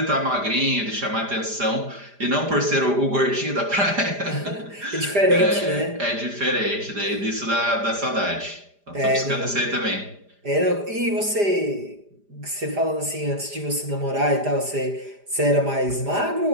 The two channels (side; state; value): left; late; 5.0 ms